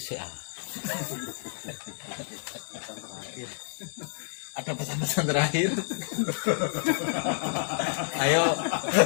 ah. Ada pesan-pesan terakhir? Ayo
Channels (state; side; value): silent; right; digital silence